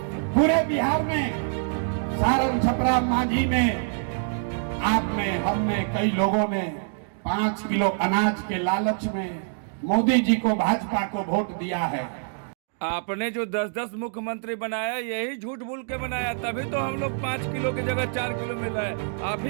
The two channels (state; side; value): silent; left; digital silence